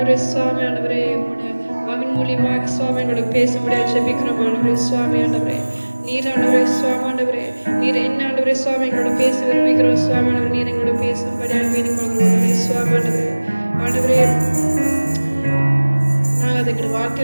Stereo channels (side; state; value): both; inverted; correlation -1.00